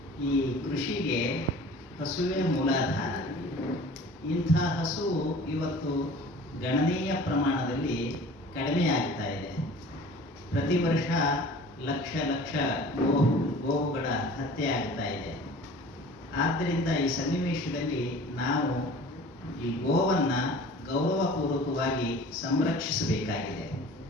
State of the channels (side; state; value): both; normal; correlation 0.44